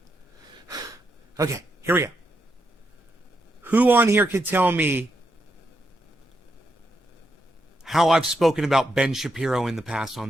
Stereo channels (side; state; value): both; normal; correlation 0.82